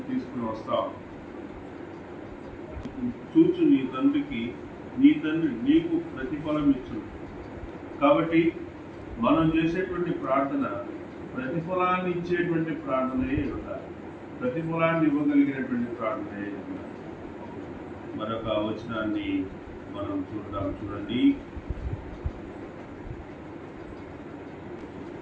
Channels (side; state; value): both; identical; correlation 1.00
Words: తీసుకుని వస్తాం. చూచు నీ తండ్రికి నీ తండ్రి నీకు ప్రతిఫలం ఇచ్చును. కాబట్టి మనం చేసేటువంటి ప్రార్థన ప్రతిఫలాన్ని ఇచ్చేటువంటి ప్రార్థనయే ఉండాలి, ప్రతిఫలాన్ని ఇవ్వగలిగినటువంటి ప్రార్థనయే ఉండాలి. మరొక వచనాన్ని మనం చూడండి.